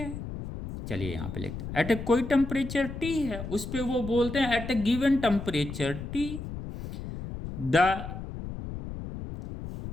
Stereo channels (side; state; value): left; noise; rumble, 8 dB below the sound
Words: चलिए यहां पे लिखते हैं एट ए कोई टेम्परेचर टी है, उस पे वो बोलते हैं at a given temperature T the